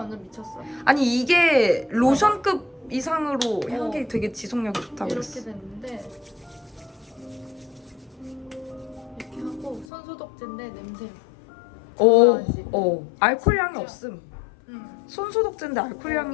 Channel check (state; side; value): drops out; right; at 9.9 s